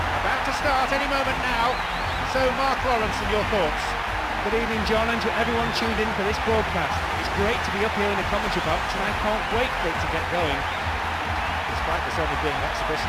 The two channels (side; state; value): both; identical; correlation 1.00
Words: about to start any moment now. So Mark Lawrence, and your thoughts? Good evening, John, and to everyone tuned in for this broadcast. It's great to be up here in the commentary box, and I can't wait for it to get going. Despite this only being an